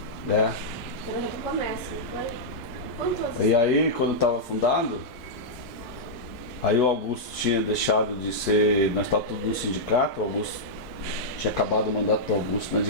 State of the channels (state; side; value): late; right; 4.6 ms